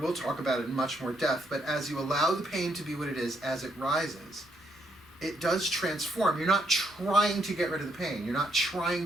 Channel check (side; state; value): both; normal; correlation 0.74